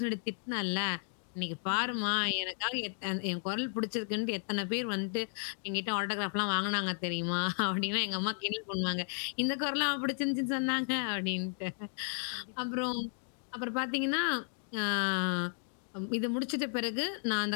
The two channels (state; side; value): silent; right; 55 dB below the other